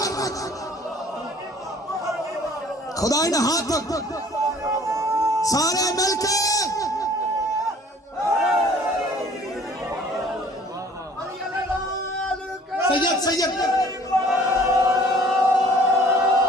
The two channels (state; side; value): normal; both; correlation 0.53